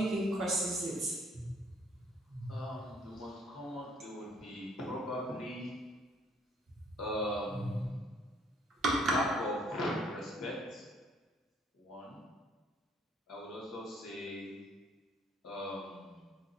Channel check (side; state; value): both; normal; correlation 0.63